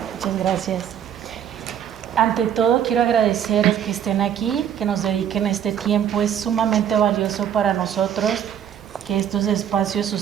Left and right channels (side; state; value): left; quieter; 9.4 dB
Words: Muchas gracias. Ante todo, quiero agradecer que estén aquí, que nos dediquen este tiempo. Es sumamente valioso para nosotros que estos espacios